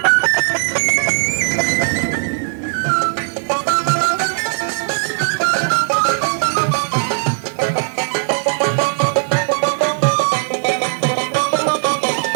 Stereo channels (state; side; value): silent; left; digital silence